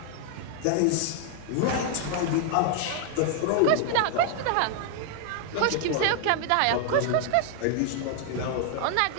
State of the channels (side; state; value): both; different; correlation 0.00